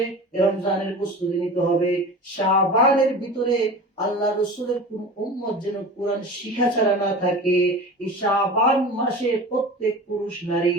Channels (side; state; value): both; normal; correlation 0.34